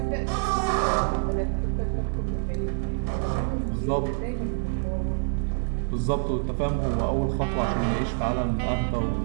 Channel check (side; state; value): left; silent; digital silence